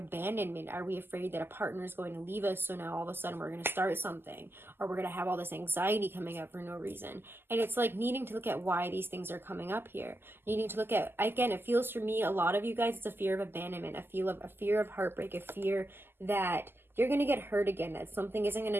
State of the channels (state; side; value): late; left; 0.11 ms